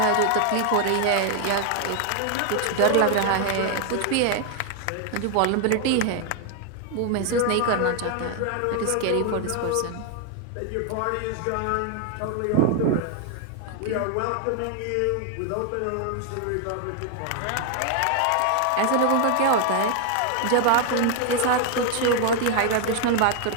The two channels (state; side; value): different; both; correlation 0.00